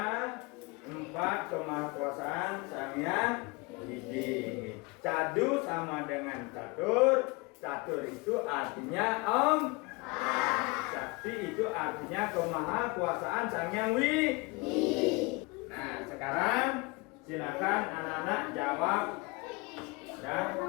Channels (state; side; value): quieter; right; 26.7 dB